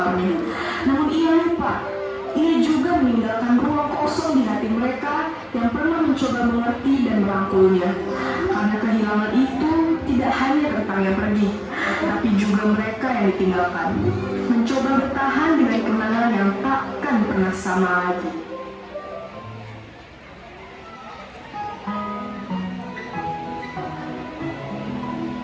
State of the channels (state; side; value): identical; both; correlation 1.00